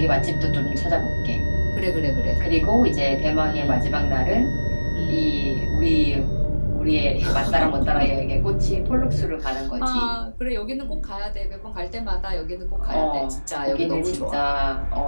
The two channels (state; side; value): inverted; both; correlation -1.00